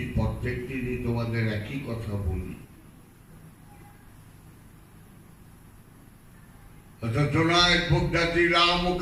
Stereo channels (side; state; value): both; identical; correlation 1.00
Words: প্রত্যেক দিনই তোমাদের একই কথা বলি। জোনায়েদ বাগদাদী